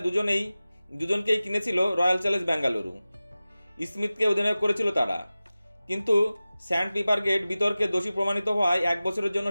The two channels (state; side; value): inverted; both; correlation -0.97